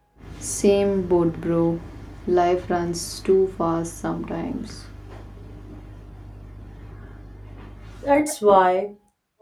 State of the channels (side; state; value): both; identical; correlation 1.00